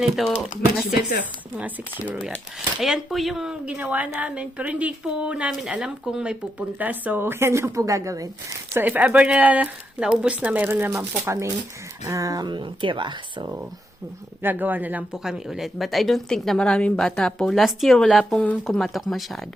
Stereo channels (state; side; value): normal; both; correlation 0.82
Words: mga 6 euro yan. Ayan po yung ginawa namin, pero hindi po namin alam kung may pupunta. So, yan lang po gagawin. So, if ever na naubos na, mayroon naman po kaming tira. So, gagawa na lang po kami ulit. But I don't think na maraming bata po. Last year, wala pong kumatok